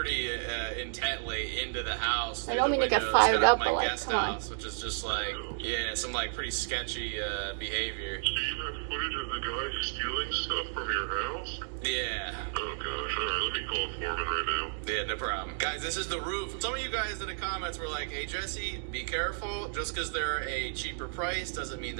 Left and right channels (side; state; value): left; silent; digital silence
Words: intently into the house. I don't mean to get Windows, fired kind of up, my but like, guest come on. house, which is just like, yeah, some like pretty sketchy behavior. Do you have footage of the guy stealing stuff from your house? Yeah. Oh gosh, alright, let me call Foreman right now. Yeah, no problem. Guys, this is the roof. Some of you guys in the comments were like, hey, Jesse, be careful. Just because they're a cheaper price doesn't mean